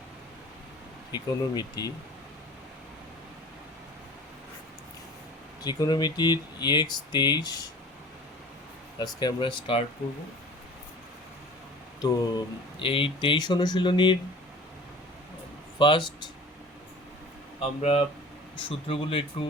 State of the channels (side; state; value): both; normal; correlation 0.42